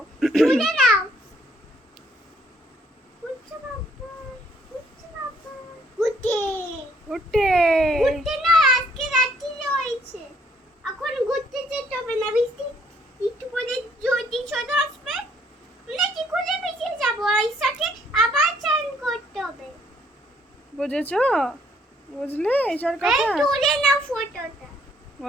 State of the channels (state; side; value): normal; both; correlation 0.66